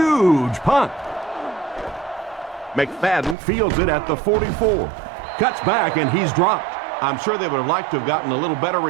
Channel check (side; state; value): left; drops out; at 3.4 s